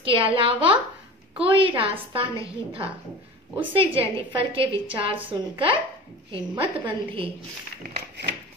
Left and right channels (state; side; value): normal; both; correlation 0.35